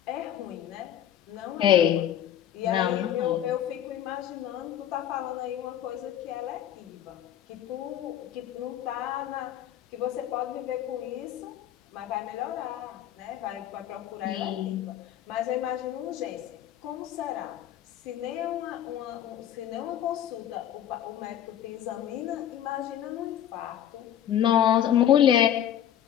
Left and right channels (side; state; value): right; quieter; 10.8 dB